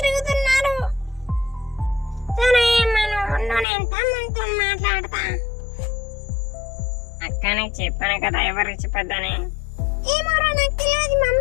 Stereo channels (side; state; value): right; drops out; at 3.7 s